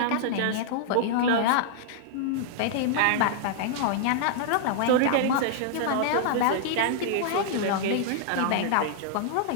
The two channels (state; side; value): different; both; correlation -0.01